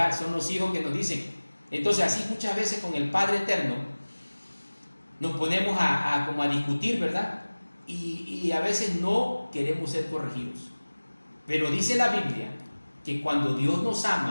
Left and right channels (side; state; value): both; inverted; correlation -1.00